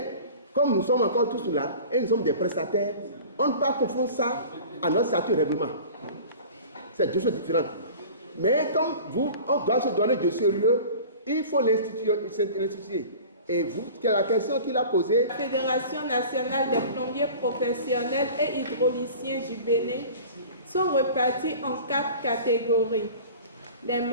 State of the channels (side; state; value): both; inverted; correlation -0.41